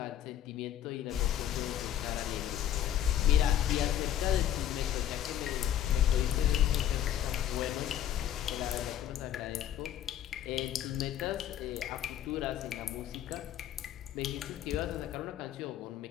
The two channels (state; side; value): quieter; right; 11.0 dB